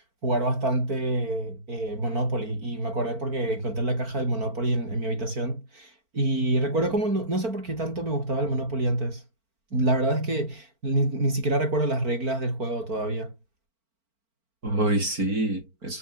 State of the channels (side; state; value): left; late; 4.4 ms